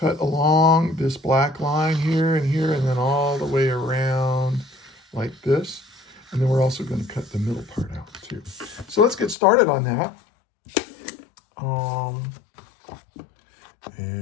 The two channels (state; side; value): drops out; right; at 9.3 s